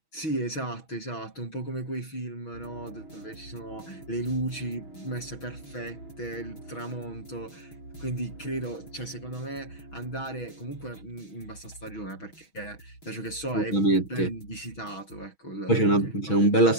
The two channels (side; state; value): right; late; 6.2 ms